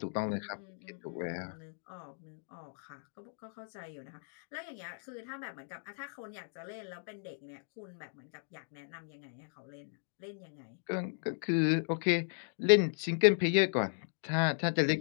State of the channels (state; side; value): silent; right; digital silence